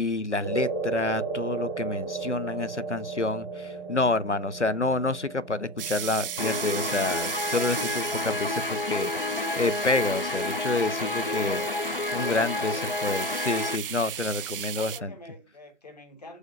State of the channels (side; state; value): both; normal; correlation 0.26